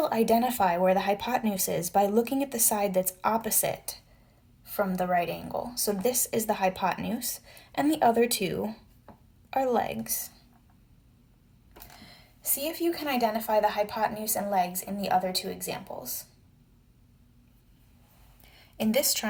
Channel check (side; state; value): both; identical; correlation 1.00